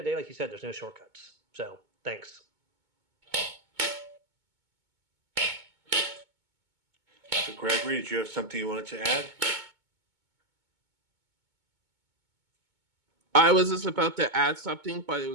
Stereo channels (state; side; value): late; left; 2.2 ms